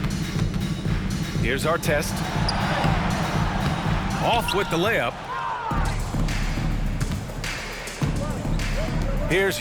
Here's Artest. Off with the layup. Here's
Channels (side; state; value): both; identical; correlation 1.00